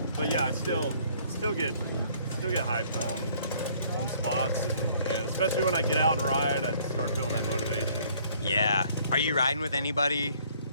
But yeah, I still get hyped on spots, and especially when I get out and ride, I start feeling that motivation. Yeah. Are you riding with anybody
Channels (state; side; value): inverted; both; correlation -0.60